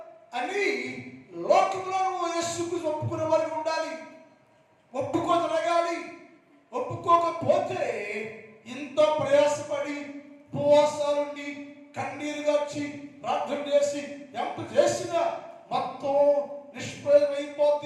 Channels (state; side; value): identical; both; correlation 1.00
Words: అని లోకంలో నువ్వు యేసుకు ఒప్పుకునే వారికి ఉండాలి. ఒప్పుకోదలగాలి. ఒప్పుకో ఒప్పుకోకపోతే ఇంత ప్రయాసపడి ఉపవాసాలుండి కన్నీరుగా వచ్చి ప్రార్థన చేసి ఎంత చేసినా మొత్తం